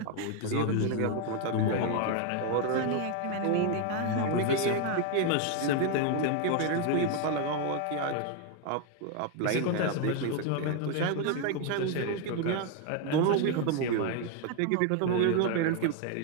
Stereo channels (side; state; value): both; different; correlation 0.01